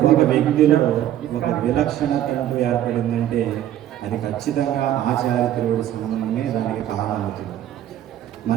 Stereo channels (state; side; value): quieter; left; 11.9 dB